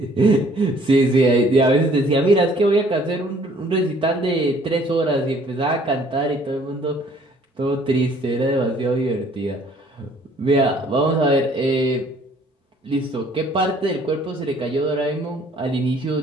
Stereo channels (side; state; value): both; normal; correlation 0.58